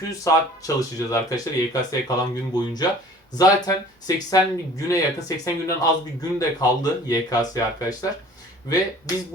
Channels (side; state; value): both; normal; correlation 0.49